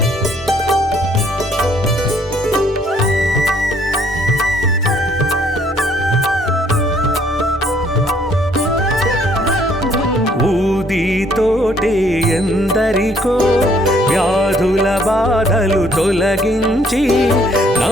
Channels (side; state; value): both; normal; correlation 0.64